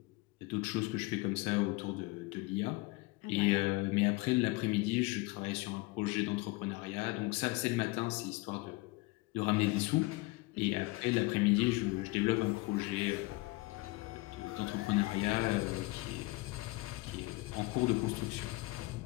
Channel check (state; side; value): quieter; right; 23.1 dB